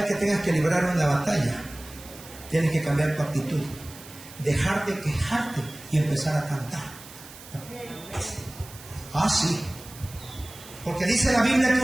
que tengas que librar una batalla, tienes que cambiar tu actitud. Dejar de quejarte y empezar a cantar. Ah, sí. Porque dice la Biblia que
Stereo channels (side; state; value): right; noise; hiss, 18 dB below the sound